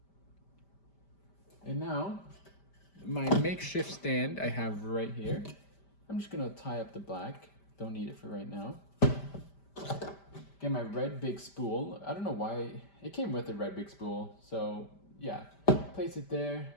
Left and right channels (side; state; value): right; late; 5.1 ms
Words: And now, my makeshift stand I have right here. I'm just gonna tie up the black. Don't need it for right now. Get my red big spool. I don't know why, it came with a red big spool. So yeah, place it there.